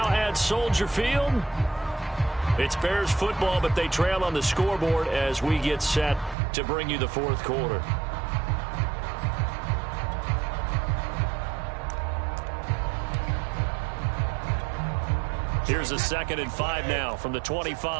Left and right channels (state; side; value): drops out; left; at 6.4 s